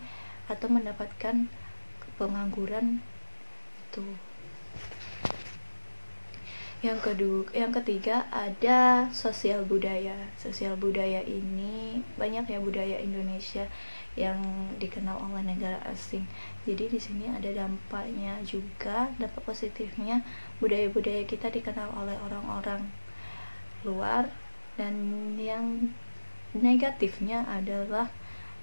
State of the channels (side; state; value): both; inverted; correlation -1.00